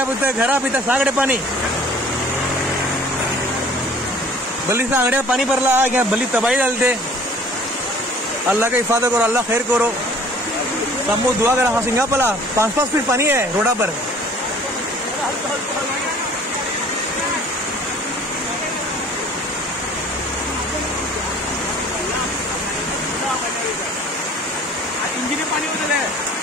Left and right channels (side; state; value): both; normal; correlation 0.51